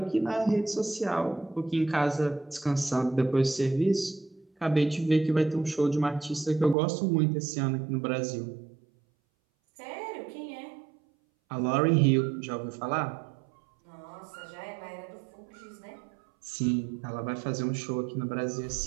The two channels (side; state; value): left; drops out; at 6.8 s